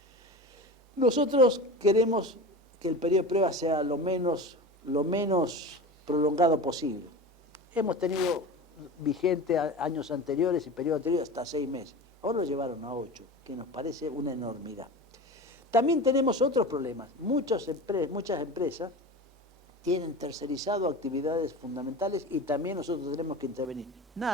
Nosotros queremos que el periodo de prueba sea lo menos prolongado posible. Hemos tenido vigente años anteriores y periodos anteriores hasta 6 meses. Ahora lo llevaron a 8, que nos parece una enormidad. También tenemos otros problemas. Muchas empresas tienen tercerizado actividades fundamentales y también nosotros tenemos que intervenir.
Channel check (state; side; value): normal; both; correlation 0.31